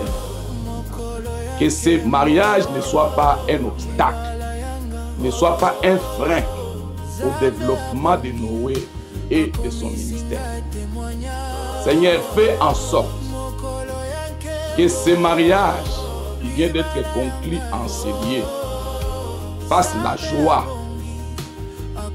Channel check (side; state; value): both; identical; correlation 1.00